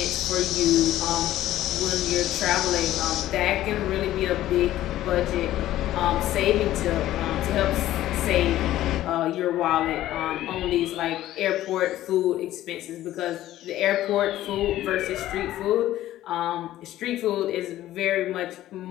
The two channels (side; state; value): right; quieter; 14.0 dB